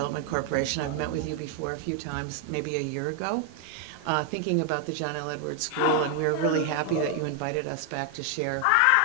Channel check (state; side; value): different; both; correlation 0.00